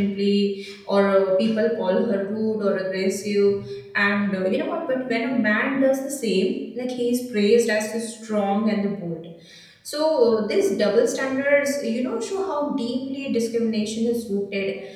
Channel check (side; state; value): both; identical; correlation 1.00